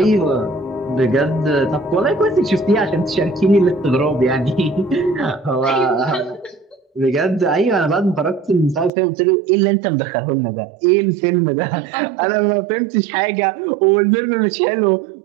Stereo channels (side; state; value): left; drops out; at 8.9 s